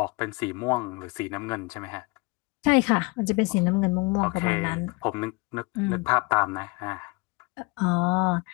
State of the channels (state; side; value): quieter; right; 26.8 dB